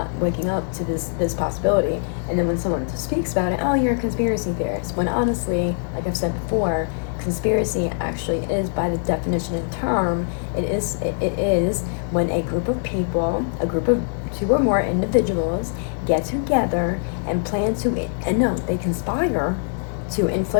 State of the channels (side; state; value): right; silent; 60 dB below the other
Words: waking up to this possibility. And then when someone speaks about it, oh, you're a conspiracy theorist. When honestly, like I've said before, conspiracy actually is, by the definition and term, it is when a group of people, a group of 2 or more individuals, get together and plan to, and no, they conspire to